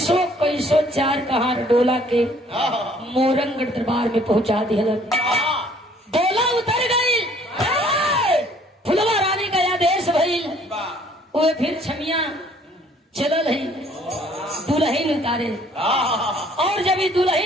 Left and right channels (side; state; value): both; normal; correlation 0.59